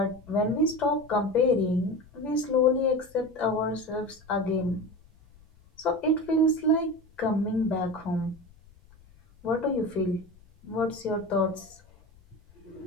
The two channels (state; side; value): noise; left; rumble, 27 dB below the sound